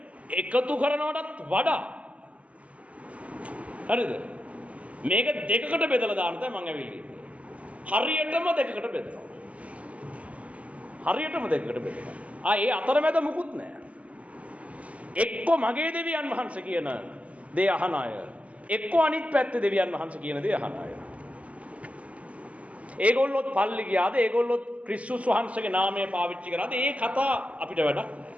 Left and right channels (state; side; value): late; left; 0.068 ms